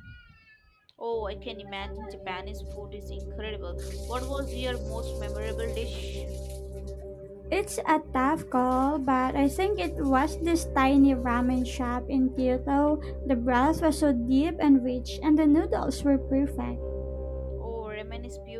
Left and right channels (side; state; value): both; identical; correlation 1.00